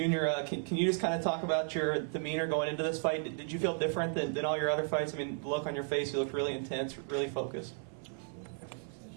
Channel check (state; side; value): silent; left; 55 dB below the other